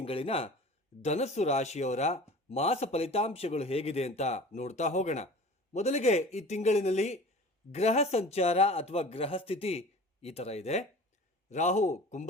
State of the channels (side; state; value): both; normal; correlation 0.41